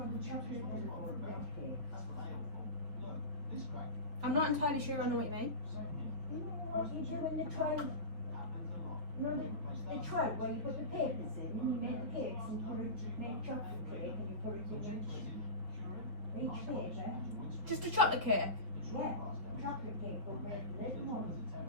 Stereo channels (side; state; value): left; late; 5.1 ms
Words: I'm not entirely sure I know what you mean. What you do in the tray, you know the tray where you put the papers in, and you make the cakes and make chocolate cake and you put it in each paper. Just a chocolate cake? Yeah, chocolate cake but with little ones.